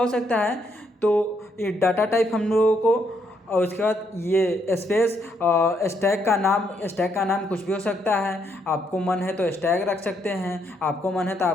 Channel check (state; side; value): normal; both; correlation 0.74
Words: सकता है। तो ये डाटा टाइप हम लोगों को, और उसके बाद ये स्पेस स्टैक का नाम कुछ भी हो सकता है। आपको मन है तो स्टैक रख सकते हैं, आपको मन है तो